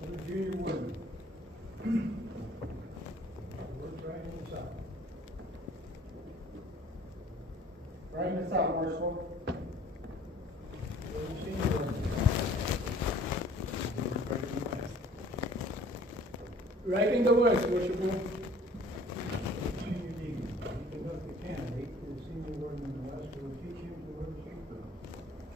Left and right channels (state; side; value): normal; both; correlation 0.53